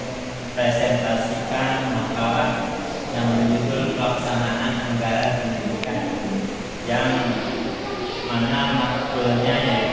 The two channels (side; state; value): both; identical; correlation 1.00